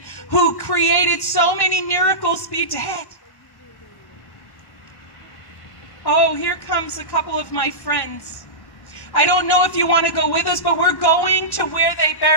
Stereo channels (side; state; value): right; late; 1.6 ms